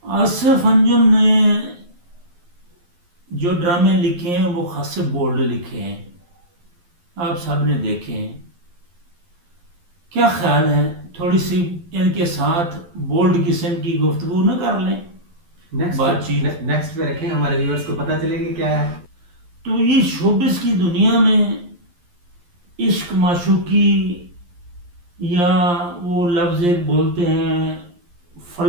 आसिफ अंजुम ने जो ड्रामे लिखे हैं वो खासे बोल्ड लिखे हैं, आप सब ने देखे हैं। क्या ख्याल है थोड़ी सी इनके साथ बोल्ड किस्म की गुफ्तगू न कर लें, बातचीत। नेक्स्ट पे रखें, हमारे व्यूअर्स को पता चलेगा क्या है। तो ये शोबिस की दुनिया में इश्क माशूकी, या वो लफ्ज़ एक बोलते हैं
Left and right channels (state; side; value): late; left; 11 ms